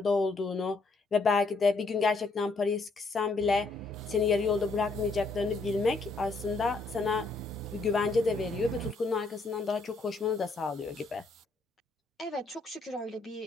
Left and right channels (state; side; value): quieter; right; 3.5 dB